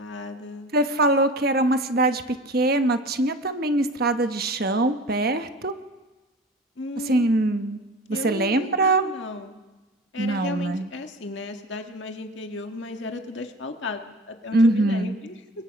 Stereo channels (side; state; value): both; normal; correlation 0.37